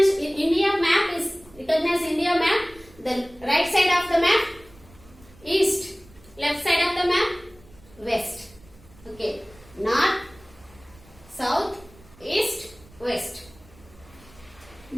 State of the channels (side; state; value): right; noise; rumble, 25 dB below the sound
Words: map is recognized. India map, the right side of the map east, left side of the map west. Okay, north, south, east, west.